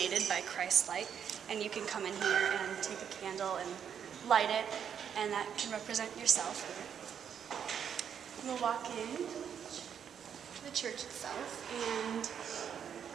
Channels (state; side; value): quieter; left; 8.1 dB